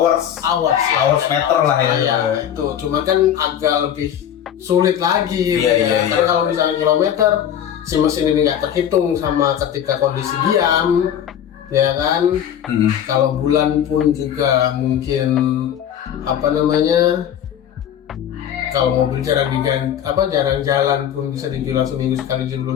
meter lah ya. Iya, itu cuma kan agak lebih sulit lagi. Karena kalau misalnya kilometer si mesin ini nggak terhitung sama ketika kondisi diam, ya kan. Kalau bulan pun juga mungkin kalau mobil jarang jalan pun bisa dibilang seminggu sekali juga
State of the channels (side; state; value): right; quieter; 9.7 dB